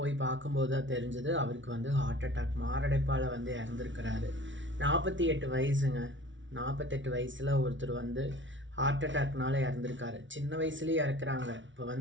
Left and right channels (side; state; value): left; late; 0.55 ms